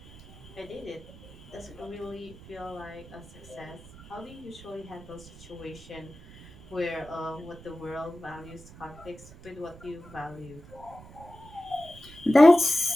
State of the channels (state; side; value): noise; right; rumble, 19 dB below the sound